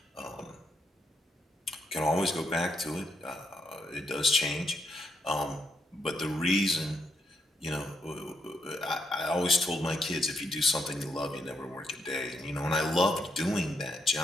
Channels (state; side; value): normal; both; correlation 0.78